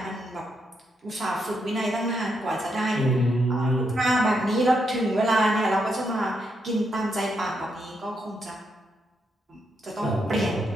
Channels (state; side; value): normal; both; correlation 0.80